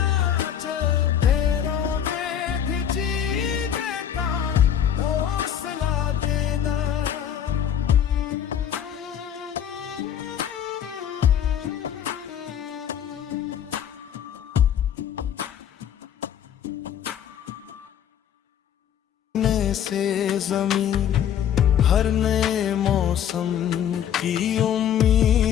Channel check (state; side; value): quieter; right; 9.3 dB